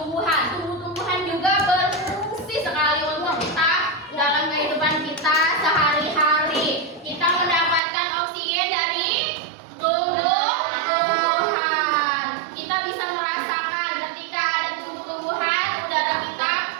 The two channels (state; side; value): drops out; left; at 7.8 s